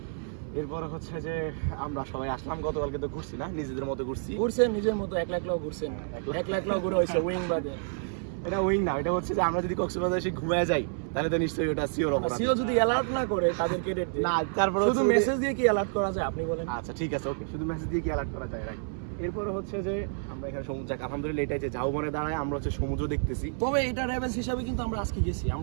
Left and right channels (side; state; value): left; silent; 58 dB below the other